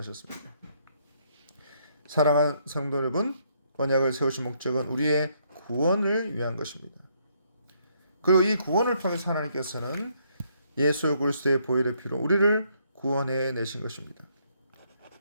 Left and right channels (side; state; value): both; inverted; correlation -0.71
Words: 사랑하는 성도 여러분, 언약을 세우신 목적은 우리의 구원을 위한 것입니다. 그리고 이 구원을 통해서 하나님께서는 예수 그리스도의 보혈의 피로 우리를 구원해 내신 것입니다.